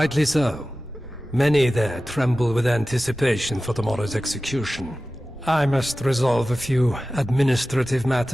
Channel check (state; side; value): normal; both; correlation 0.95